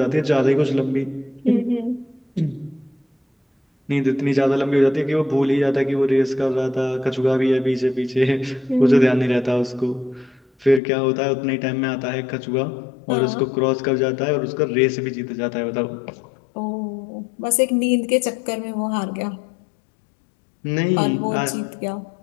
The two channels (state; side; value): drops out; right; at 10.8 s